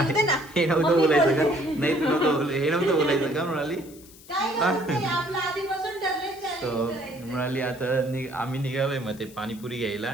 येते ना. हे नव्हतं बोलायचं का? नाही तू नव्हतं हे नव्हतं बोलायचं का मृणाली? काय नाही, आपलं आधीपासून ठरलंय सो challenge करायचं. मृणाली आता आम्ही निघालोय मग ते पाणीपुरी घ्यायला.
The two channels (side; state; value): left; noise; hiss, 22 dB below the sound